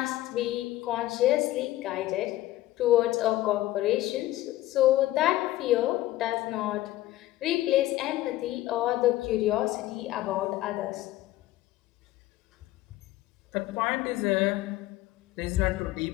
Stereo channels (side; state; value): right; quieter; 15.7 dB